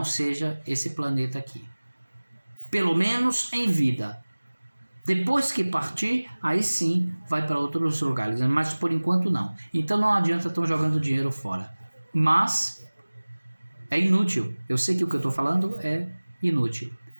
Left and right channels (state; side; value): inverted; both; correlation -1.00